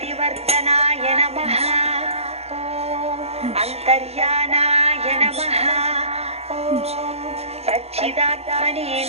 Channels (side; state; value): left; late; 0.30 ms